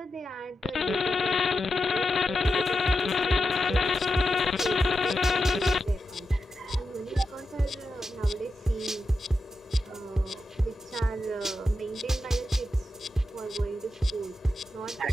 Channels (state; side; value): normal; both; correlation 0.89